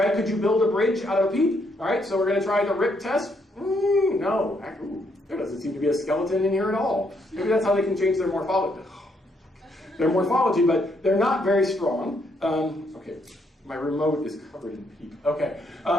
Could you build a bridge out of a peep? All right, so we're going to try the rip test. No, there doesn't seem to be a skeleton in here at all. Maybe that's how they can change their morphology. Their morphology, but they're not very strong. Okay, my remote is covered in peep. Okay,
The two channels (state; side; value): normal; both; correlation 0.74